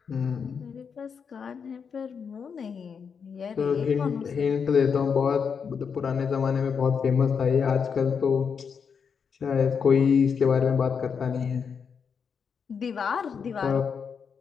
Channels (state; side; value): quieter; right; 6.4 dB